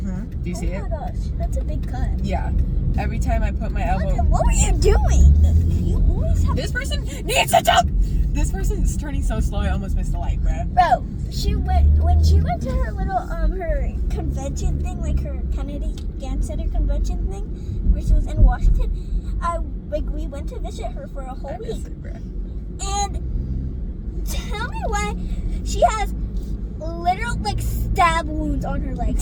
Do you see it? Oh my gosh, that's a big cut. Yeah. Every time I put my elbow. What were you doing? You always have. This person needs to jump! This person is turning so slow, I almost missed the light, bruh. Bro, when she went to her little her convention thing, like her Kennedy Dance Center convention thing, where she was in Washington. We went to visit her for a whole week. It, bruh. And tell me why she has literal like stab wounds on her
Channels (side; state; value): both; identical; correlation 1.00